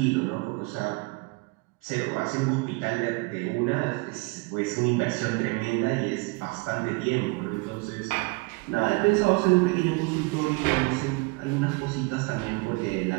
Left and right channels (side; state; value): left; quieter; 27.6 dB